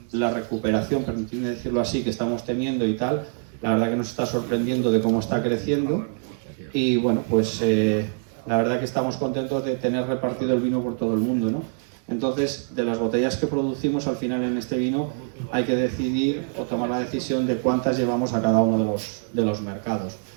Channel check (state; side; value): silent; left; 62 dB below the other